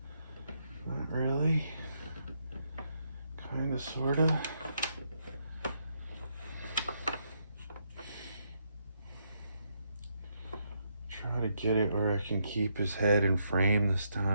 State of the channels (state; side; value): inverted; both; correlation -0.77